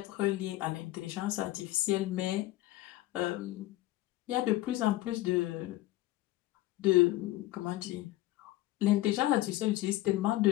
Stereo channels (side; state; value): right; quieter; 16.8 dB